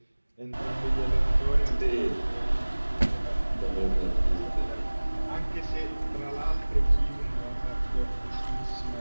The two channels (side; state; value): both; inverted; correlation -1.00